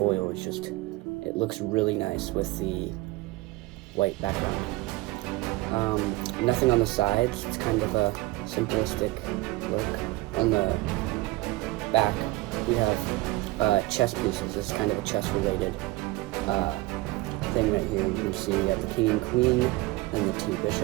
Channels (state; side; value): quieter; left; 20.3 dB